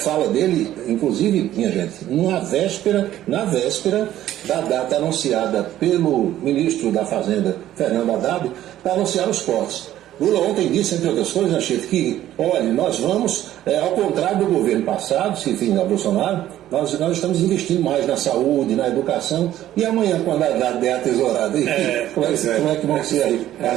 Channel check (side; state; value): left; quieter; 12.9 dB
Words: dele, inclusive, minha gente, na véspera da data anunciada pelo ministro da Fazenda, Fernando Haddad, para anunciar os cortes. Lula ontem disse, entre outras coisas, Chico, que, olha, nós vamos, ao contrário do governo passado, se enfim, da Bolsonaro, nós estamos investindo mais na saúde, na educação, e amanhã, quando a Haddad der a tesourada, como é que vão ser aí